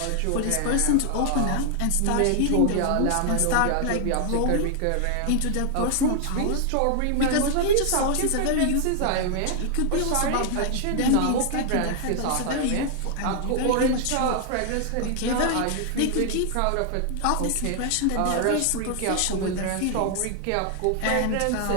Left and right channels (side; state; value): both; different; correlation 0.00